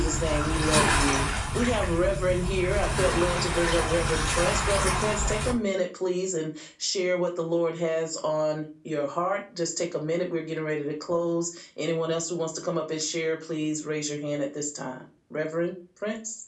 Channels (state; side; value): identical; both; correlation 1.00